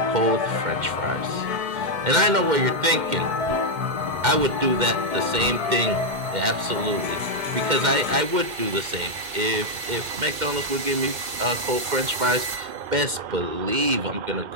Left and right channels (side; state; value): left; late; 2.1 ms